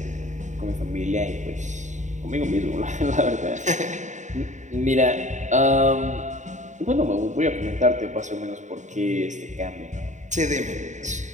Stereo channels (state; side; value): late; left; 0.35 ms